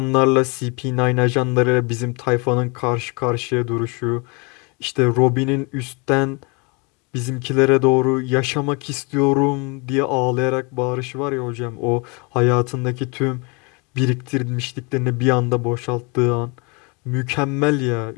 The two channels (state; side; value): quieter; right; 30.7 dB